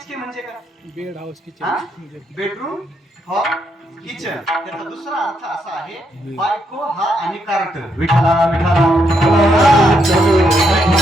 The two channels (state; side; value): normal; both; correlation 0.77